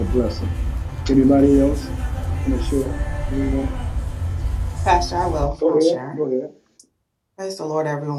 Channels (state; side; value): identical; both; correlation 1.00